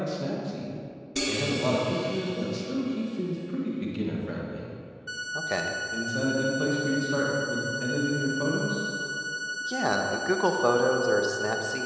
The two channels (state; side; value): identical; both; correlation 1.00